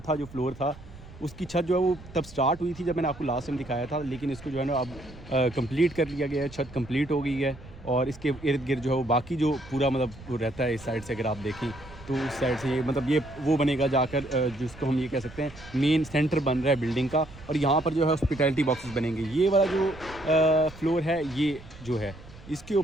जो फ्लोर था उसकी छत जो है वो तब स्टार्ट हुई थी जब मैंने आपको लास्ट टाइम दिखाया था, लेकिन इसको जो है ना अब कंप्लीट कर लिया गया है। छत कंप्लीट हो गई है और इसके इर्द गिर्द जो है वो बाकी जो पूरा मतलब वो रहता है इस साइड से, अगर आप देखें तो उस साइड से ये मतलब ये वो बनेगा जाकर, जिसको हम ये कह सकते हैं मेन सेंटर बन रहा है बिल्डिंग का। और यहाँ पर जो है हॉस्पिटैलिटी बॉक्सेस बनेंगे। ये वाला जो फ्लोर है ये जो है इसके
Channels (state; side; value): noise; right; rumble, 18 dB below the sound